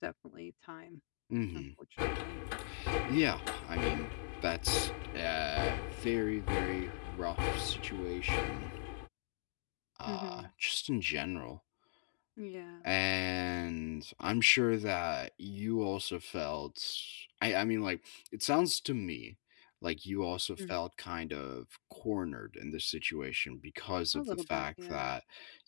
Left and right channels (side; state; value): right; silent; digital silence